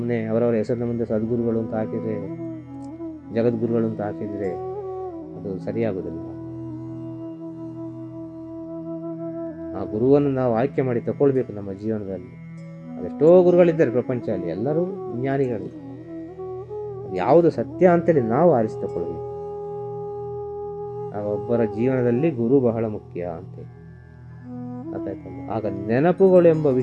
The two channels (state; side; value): identical; both; correlation 1.00